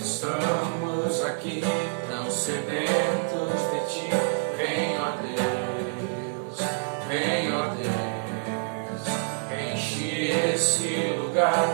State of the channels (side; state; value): left; silent; digital silence